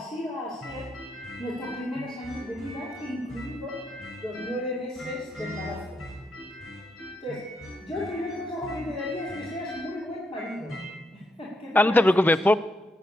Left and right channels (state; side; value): normal; both; correlation 0.79